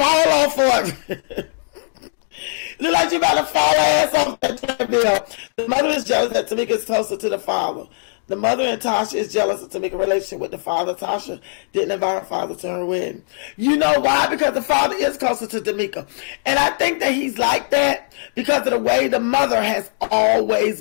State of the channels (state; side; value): silent; right; digital silence